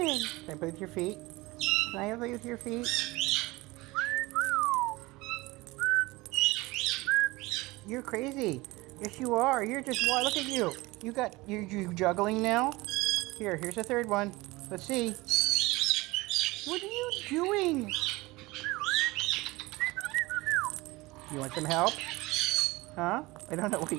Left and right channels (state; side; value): quieter; left; 21.5 dB